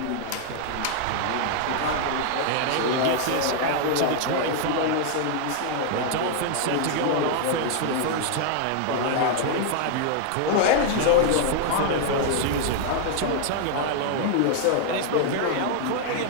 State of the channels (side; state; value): both; different; correlation 0.00